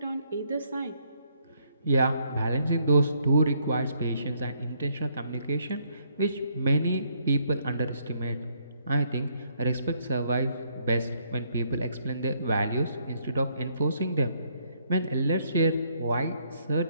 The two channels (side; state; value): both; inverted; correlation -0.71